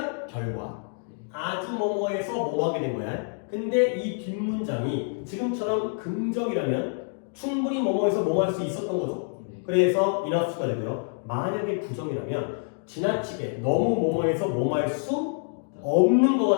결과 아주 뭐뭐해서 뭐 하게 된 거야. 근데 이 뒷문장이 지금처럼 긍정이라면 충분히 뭐뭐해서 뭐 할 수 있었던 거죠. 네. 그래서 enough가 되고요. 만약에 부정이라면 지나치게 너무 뭐뭐해서 뭐 할 수 없는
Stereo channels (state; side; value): silent; right; 60 dB below the other